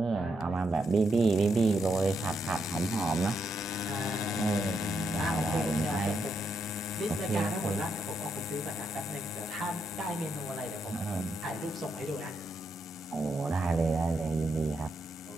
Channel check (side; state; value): both; normal; correlation 0.80